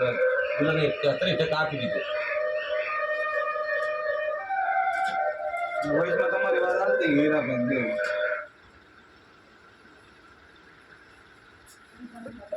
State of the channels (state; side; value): identical; both; correlation 1.00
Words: મને 30% આપી દીધું. વોઇસમાં તમારી વાત આવતી હીરાબેન દેવ